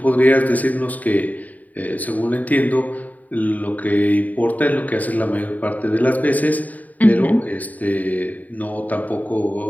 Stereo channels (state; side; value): late; right; 0.076 ms